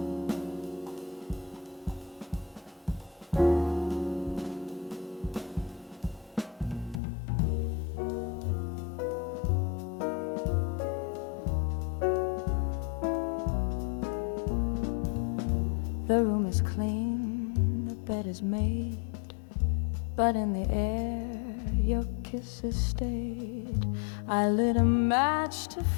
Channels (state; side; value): drops out; right; at 7.0 s